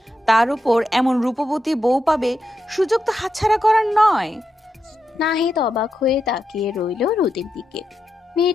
তার উপর এমন রূপবতী বউ পাবে, সুযোগ তো হাতছাড়া করার নয়। নাহিদ অবাক হয়ে তাকিয়ে রইল রোদের দিকে।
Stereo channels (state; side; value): normal; both; correlation 0.86